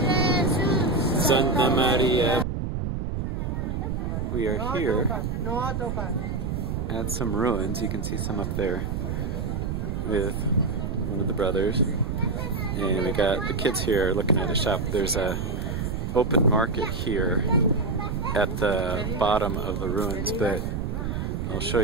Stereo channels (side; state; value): right; noise; rumble, 2 dB below the sound